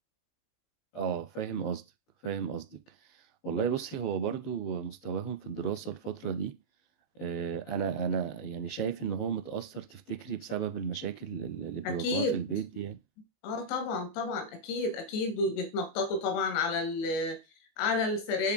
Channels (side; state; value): right; late; 19 ms